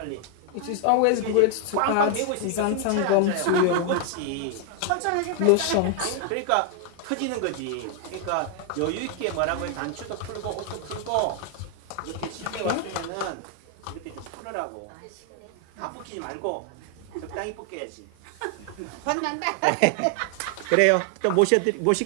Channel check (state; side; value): different; both; correlation 0.00